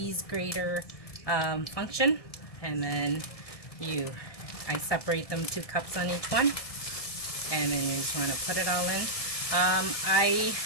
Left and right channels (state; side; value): late; right; 1.7 ms